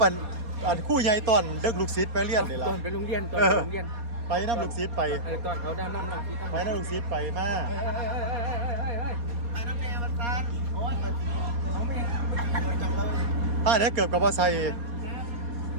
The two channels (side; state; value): left; late; 4.2 ms